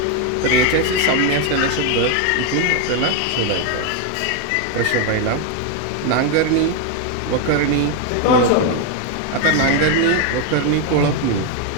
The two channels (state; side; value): different; both; correlation 0.01